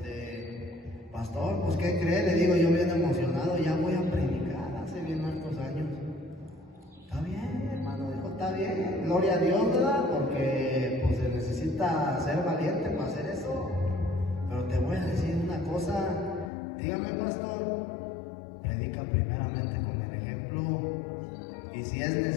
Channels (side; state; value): right; drops out; at 16.5 s